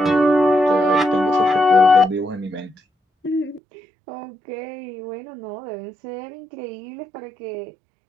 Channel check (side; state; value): left; drops out; at 3.6 s